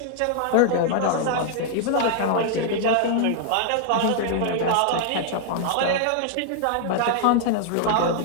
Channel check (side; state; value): both; different; correlation -0.01